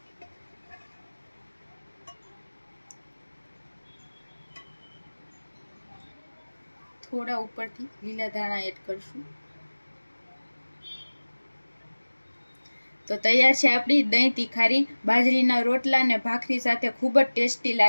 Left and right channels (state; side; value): inverted; both; correlation -1.00